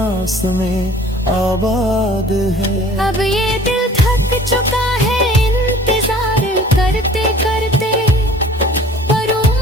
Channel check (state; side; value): normal; both; correlation 0.49